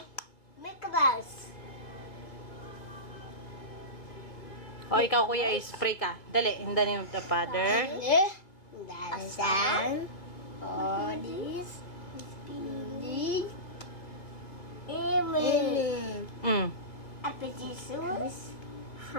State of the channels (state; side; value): late; right; 2.7 ms